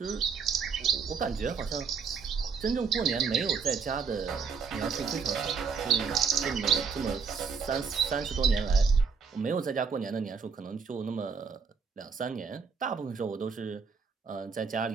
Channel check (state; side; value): quieter; left; 5.5 dB